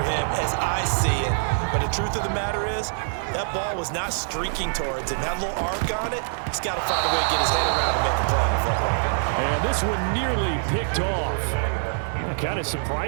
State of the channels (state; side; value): silent; left; 62 dB below the other